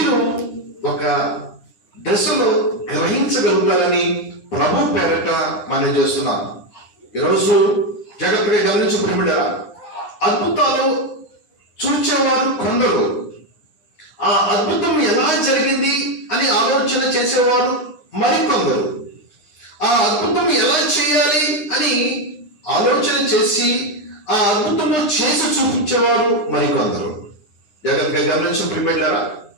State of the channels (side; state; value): right; late; 9.9 ms